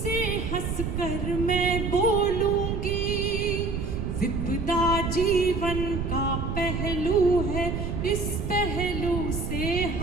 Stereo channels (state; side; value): noise; right; rumble, 2 dB below the sound